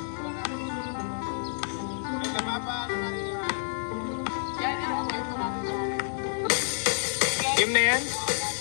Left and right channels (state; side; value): silent; right; digital silence